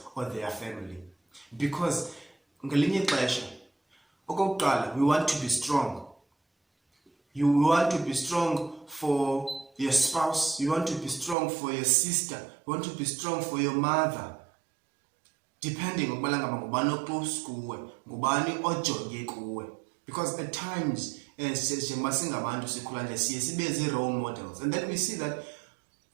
or their family, because ngelinye ixesha okokuqala we want to be strong. You want to be strong for your spouse, you want to be strong for your sister, you want to be strong for your mother, depending on ngubani oclose kuwe, ngubani ojonge kuwe. Because at times njengoba singabantu sikhula nje siye sibe role models, and then we see that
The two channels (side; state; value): left; drops out; at 11.4 s